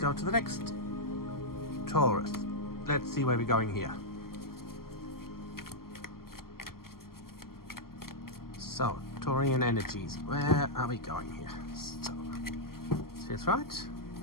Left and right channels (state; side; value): late; right; 0.92 ms